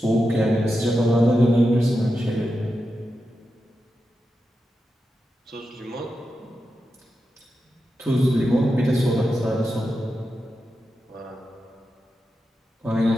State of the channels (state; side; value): normal; both; correlation 0.89